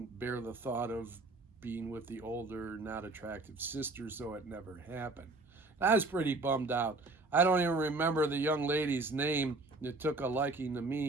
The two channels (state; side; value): quieter; left; 3.2 dB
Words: bear the thought of being with the older, not attractive sister, so it never happened. I was pretty bummed out. I don't even remember the young lady's name that took a liking to